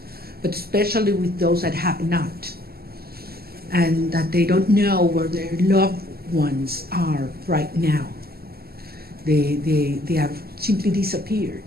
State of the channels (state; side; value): late; left; 0.45 ms